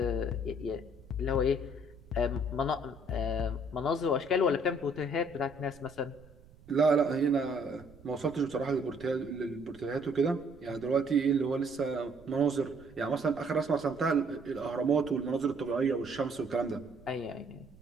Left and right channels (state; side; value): noise; right; rumble, 23 dB below the sound